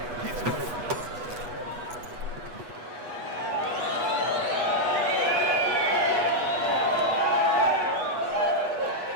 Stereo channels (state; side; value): late; left; 8.2 ms